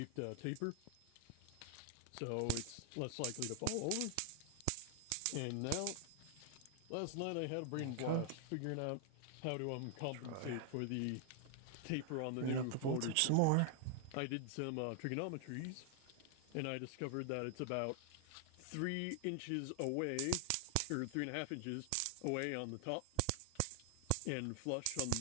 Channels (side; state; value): both; different; correlation 0.00